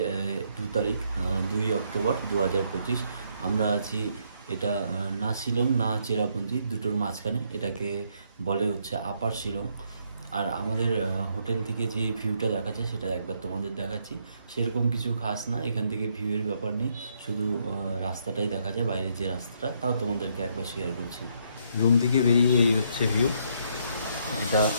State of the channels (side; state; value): both; inverted; correlation -0.72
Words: 2 তারিখ, 2 অক্টোবর 2025। আমরা আছি এটা না শিলং না চেরাপুঞ্জি, দুটোর মাঝখানে। এটাকে বলে হচ্ছে আপার শিলং। আর আমাদের হোটেল থেকে যে ভিউটা দেখা যায় সেটা একবার তোমাদের দেখাচ্ছি। সেরকম কিছু খাস না, এখান থেকে ভিউয়ের ব্যাপার নেই, শুধু রাস্তাটাই দেখা যায়, বাইরের যে রাস্তাটা, তাও তোমাদেরকে একবার শেয়ার করছি। রুম থেকে বেরিয়ে এই হচ্ছে ভিউ।